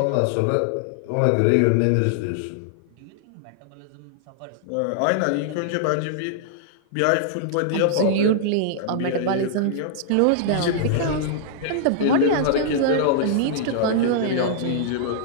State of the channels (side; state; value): both; different; correlation -0.01